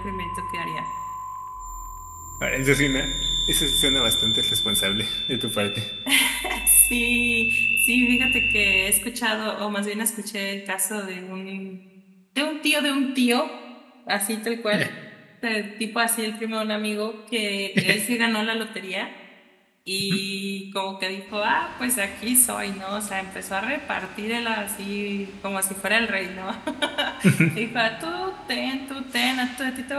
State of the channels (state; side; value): identical; both; correlation 1.00